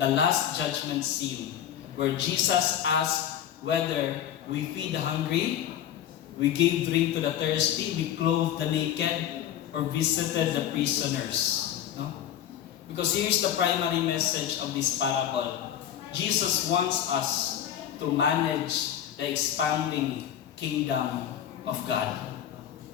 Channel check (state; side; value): quieter; right; 10.4 dB